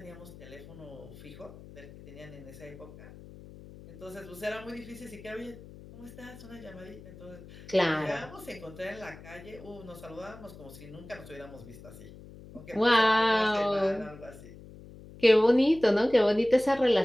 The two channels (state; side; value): noise; left; hum, 18 dB below the sound